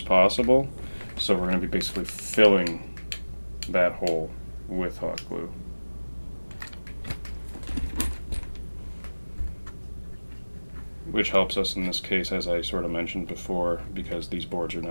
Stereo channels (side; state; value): both; inverted; correlation -1.00